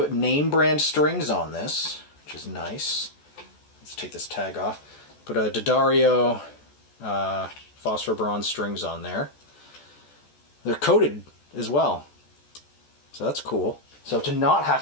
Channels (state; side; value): late; right; 14 ms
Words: name brand strings on this, which is nice. Let's take this tag off. Put a D'Addario phosphor bronze strings on there. They're coated as well, so that's cool. So to not